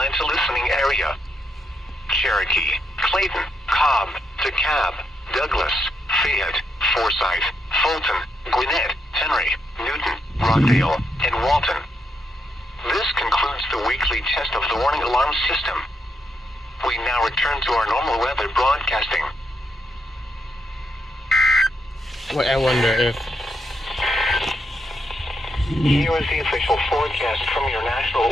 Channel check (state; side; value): normal; both; correlation 0.80